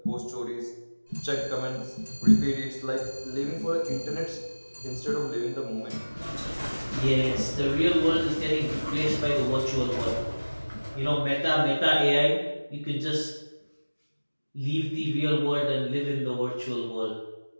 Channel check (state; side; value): inverted; both; correlation -1.00